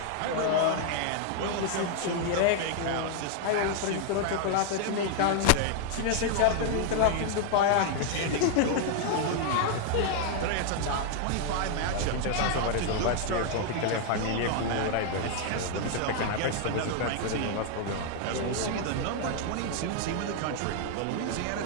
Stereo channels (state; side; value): different; both; correlation 0.00